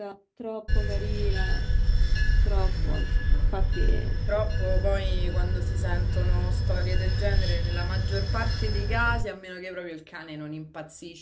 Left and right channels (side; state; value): both; identical; correlation 1.00